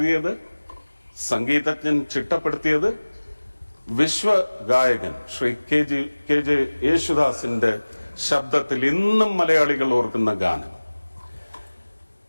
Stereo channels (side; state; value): both; inverted; correlation -1.00